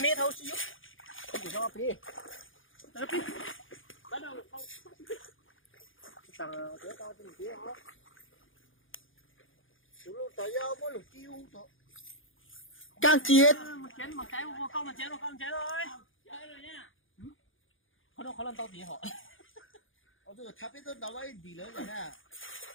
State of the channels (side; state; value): right; late; 0.58 ms